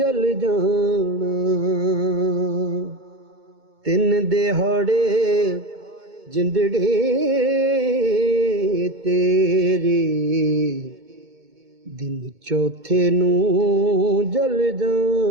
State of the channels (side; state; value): left; late; 2.2 ms